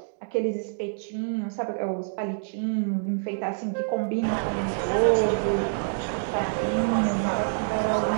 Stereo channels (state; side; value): silent; left; digital silence